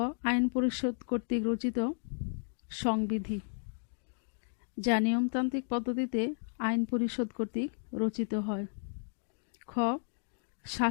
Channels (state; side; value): silent; right; digital silence